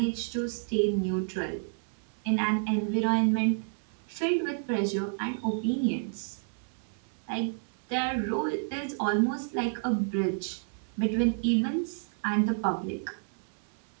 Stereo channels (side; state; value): left; silent; 58 dB below the other